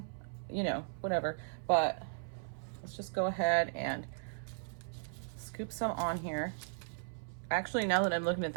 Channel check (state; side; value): silent; left; 53 dB below the other